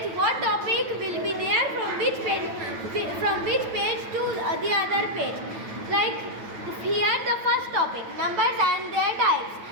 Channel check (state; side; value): late; left; 9.1 ms